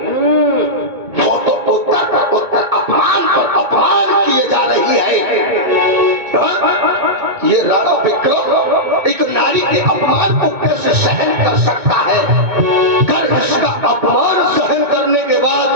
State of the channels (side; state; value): left; late; 2.2 ms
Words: वो तो उत्तर पर उत्तर अपमान पर अपमान किए जा रही है। ये राणा विक्रम एक नारी के अपमान को कैसे सहन कर सकता है? अगर इसका अपमान सहन करने के बाद